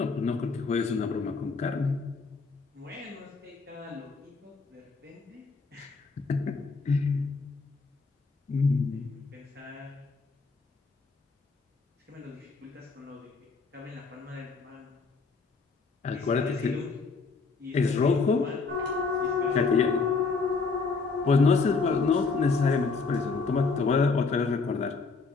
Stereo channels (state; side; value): quieter; right; 4.5 dB